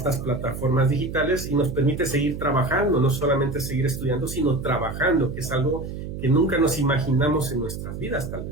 plataformas digitales y nos permite seguir trabajando, no solamente seguir estudiando, sino trabajando, que es algo que nunca nos imaginamos en nuestras vidas, tal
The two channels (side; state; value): right; noise; hum, 8 dB below the sound